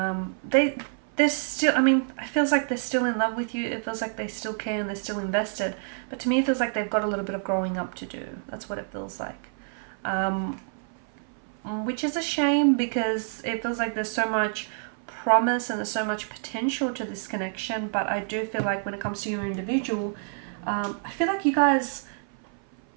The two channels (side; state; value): left; silent; 57 dB below the other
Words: still, it feels like they're still in love with you. It feels like they still care and they're still invested, but to me it feels like they've got a little bit of growing up to do. That's what it feels like, which is a shame because it feels like there's so much promise and there's so much potential to this connection. But I do feel like when it comes to your individual, I feel like you guys,